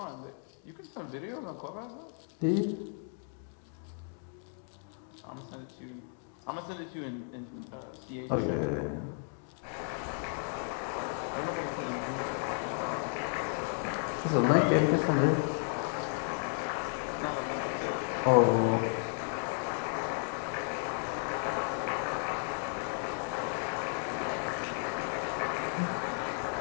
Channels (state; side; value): silent; right; 55 dB below the other